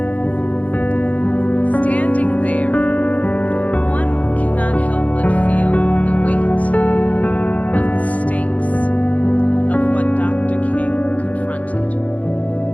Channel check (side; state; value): right; late; 0.070 ms